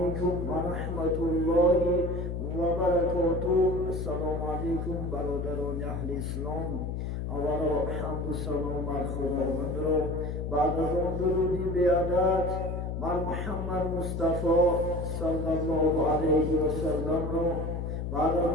ورحمة الله وبركاته. السلام عليكم برادران أهل الإسلام. اولا حمد و سلام بر خداوند را بعد از آن درودی بیادت بر محمد مصطفی صلی الله علیه و سلم را بعد از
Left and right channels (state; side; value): noise; left; hum, 3 dB below the sound